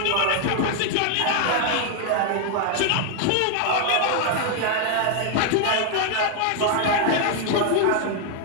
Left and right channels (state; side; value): different; both; correlation 0.00